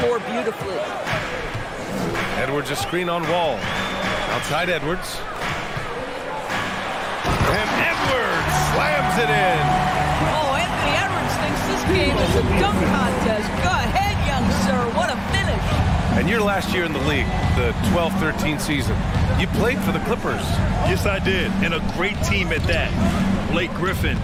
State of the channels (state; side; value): identical; both; correlation 1.00